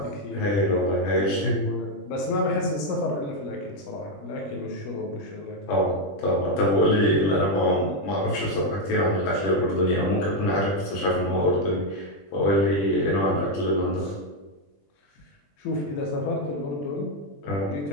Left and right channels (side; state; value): right; late; 20 ms